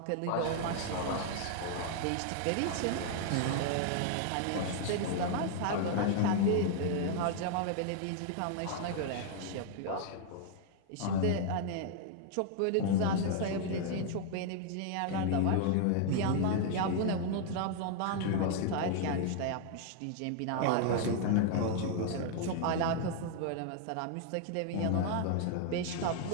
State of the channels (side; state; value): both; different; correlation 0.00